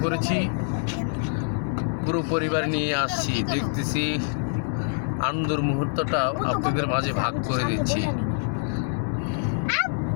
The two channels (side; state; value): right; silent; 61 dB below the other